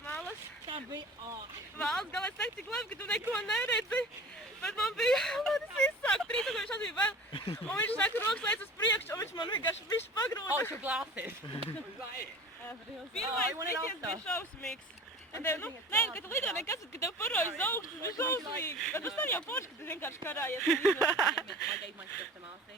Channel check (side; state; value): both; normal; correlation 0.40